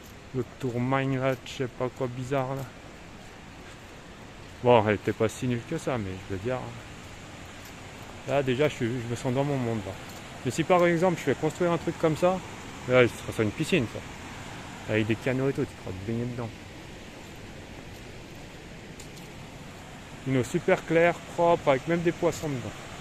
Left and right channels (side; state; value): both; identical; correlation 1.00